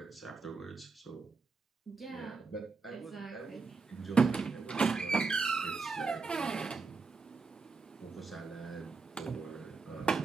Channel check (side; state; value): left; quieter; 4.5 dB